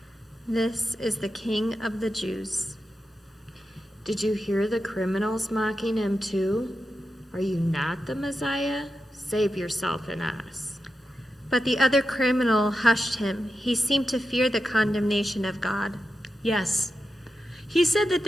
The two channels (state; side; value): normal; both; correlation 0.89